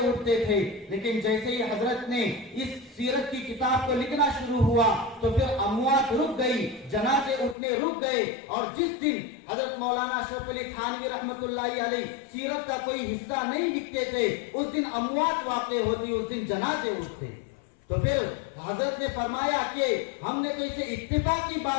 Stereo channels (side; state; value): right; drops out; at 7.6 s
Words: उठते थे। लेकिन जैसे ही हजरत ने इस सीरत की किताब को लिखना शुरू हुआ तो फिर अमवात रुक गई, जनाजे उठने रुक गए। और जिस दिन हजरत मौलाना अशरफ अली थानवी रहमतुल्लाहि अलैह सीरत का कोई हिस्सा नहीं लिखते थे, उस दिन अमवात वाक़ई होती, उस दिन जनाजे उठते। तो फिर हजरत ने फरमाया कि हमने तो इसे इत्तेफाक की